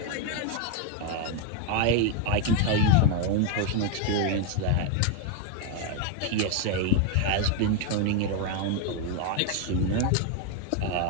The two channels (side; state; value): both; different; correlation 0.01